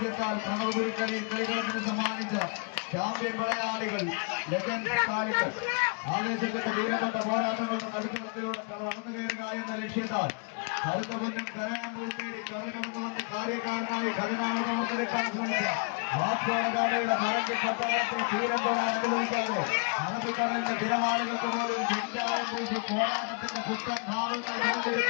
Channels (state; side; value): quieter; right; 37.4 dB